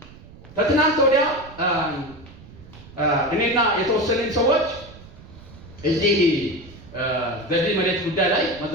ከትናንት ወዲያ እኔና የተወሰኑን ሰዎች እዚህ በዚህ መሬት ጉዳይ ላይ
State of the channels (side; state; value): right; noise; rumble, 19 dB below the sound